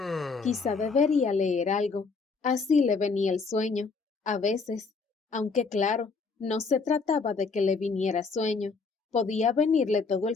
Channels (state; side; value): quieter; right; 4.5 dB